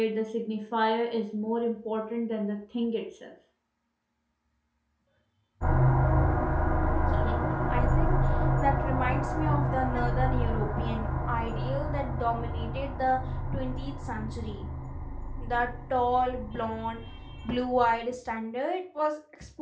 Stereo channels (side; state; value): both; identical; correlation 1.00